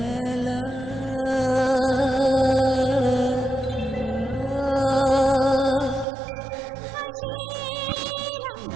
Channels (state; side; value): drops out; left; at 6.1 s